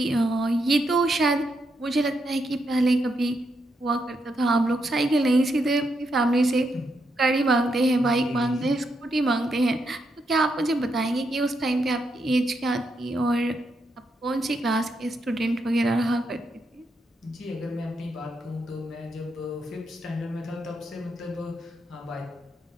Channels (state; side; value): normal; both; correlation 0.81